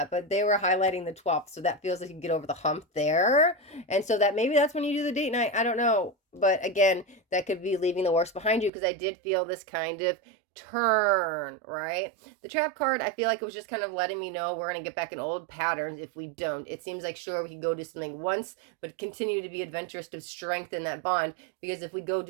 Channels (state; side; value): drops out; left; at 8.7 s